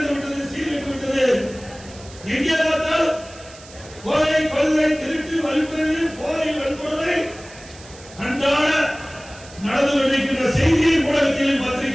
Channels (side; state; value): right; noise; hiss, 20 dB below the sound